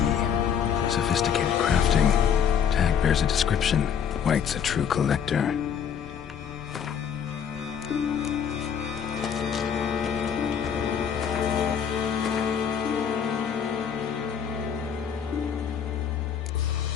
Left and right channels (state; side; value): quieter; right; 7.8 dB